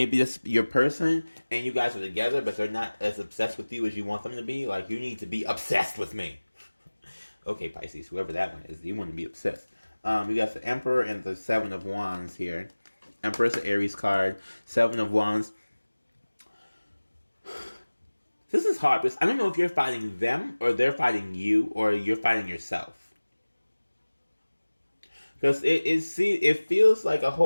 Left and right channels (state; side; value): inverted; both; correlation -1.00